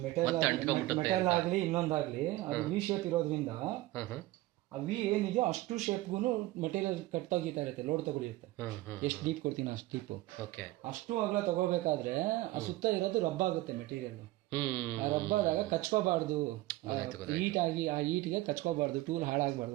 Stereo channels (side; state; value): left; quieter; 18.0 dB